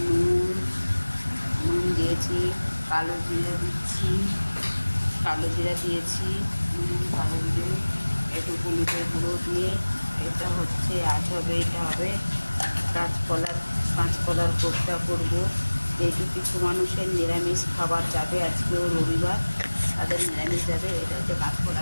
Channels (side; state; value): both; inverted; correlation -1.00